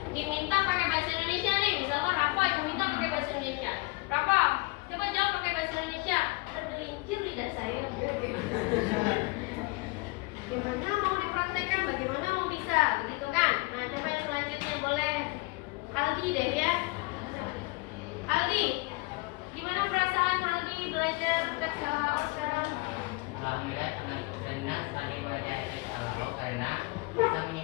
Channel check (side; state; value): right; quieter; 24.8 dB